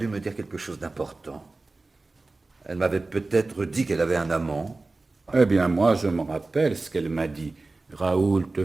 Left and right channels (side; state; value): left; quieter; 3.3 dB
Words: me dire quelque chose d'important. Elle m'avait peut-être dit qu'elle avait un amant. Eh bien, moi, je me rappelle ce qu'elle m'a dit. Raoul, te